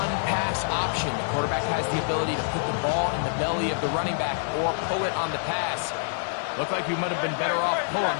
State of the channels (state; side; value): silent; right; digital silence